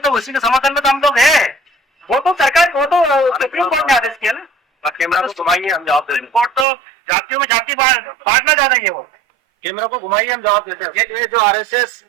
उसी के समर्थन में तो हम लोग हैं। वो तो सरकार, वो तो सुप्रीम कोर्ट ने आदेश किया ना। कैमरा को घुमाइए, हम जवाब देते हैं। कोर्ट तो जातियों में जाति बांटना चाह रही है। वो कैमरा को घुमाइए, हम जवाब देते हैं। ये जो आरएसएस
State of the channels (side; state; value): left; drops out; at 6.7 s